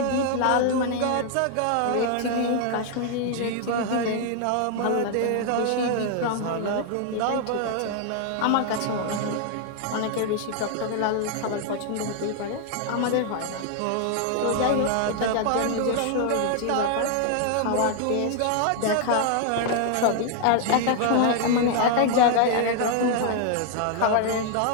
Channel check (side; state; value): both; different; correlation 0.00